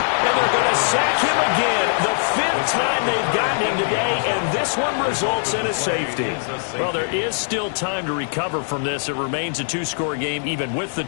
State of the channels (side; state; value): right; silent; digital silence